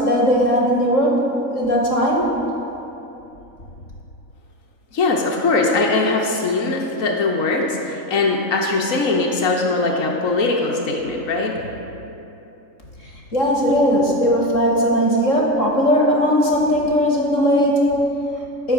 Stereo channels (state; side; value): late; right; 3.9 ms